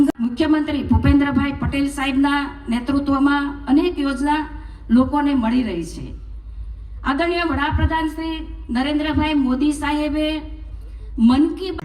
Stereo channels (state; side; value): identical; both; correlation 1.00